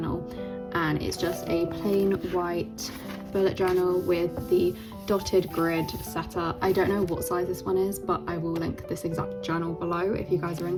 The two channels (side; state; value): both; identical; correlation 1.00